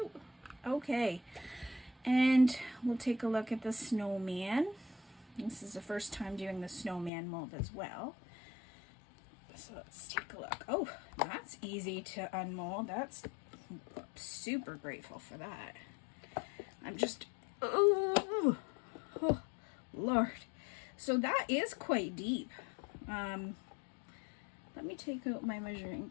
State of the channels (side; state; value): right; drops out; at 7.1 s